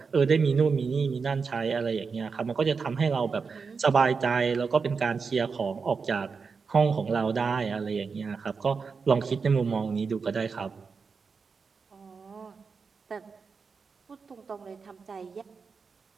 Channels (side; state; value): left; quieter; 5.2 dB